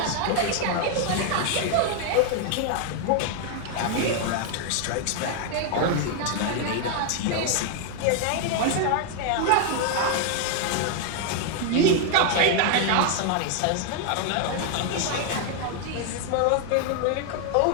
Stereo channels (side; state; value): both; different; correlation 0.00